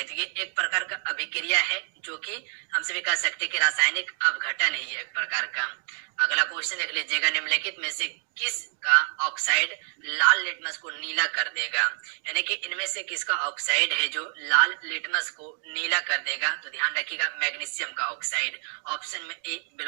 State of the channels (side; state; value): left; silent; 60 dB below the other